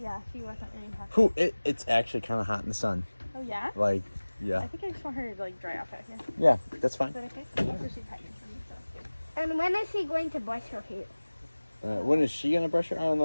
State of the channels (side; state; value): both; inverted; correlation -1.00